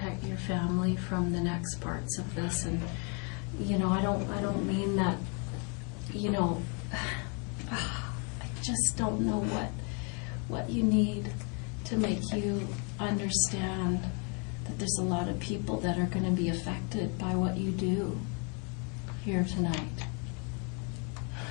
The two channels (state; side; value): quieter; right; 36.1 dB